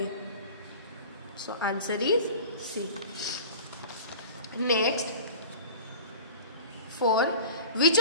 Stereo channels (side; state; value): both; inverted; correlation -0.38